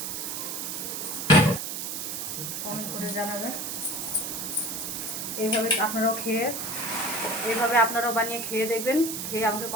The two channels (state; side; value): noise; right; hiss, 4 dB below the sound